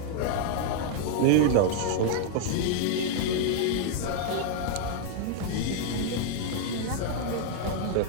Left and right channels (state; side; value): different; both; correlation -0.01